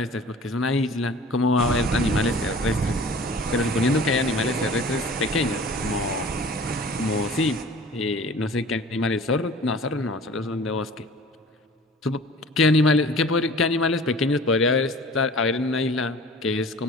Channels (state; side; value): normal; both; correlation 0.44